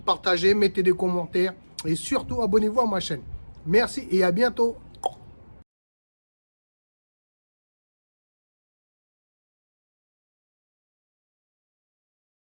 Partagez, mettez des commentaires. Et surtout, abonnez-vous à ma chaîne. Merci et à bientôt.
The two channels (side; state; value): both; inverted; correlation -1.00